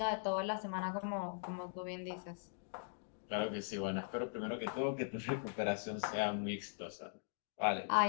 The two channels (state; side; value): silent; right; digital silence